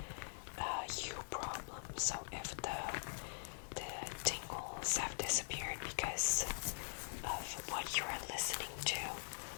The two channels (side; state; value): right; silent; digital silence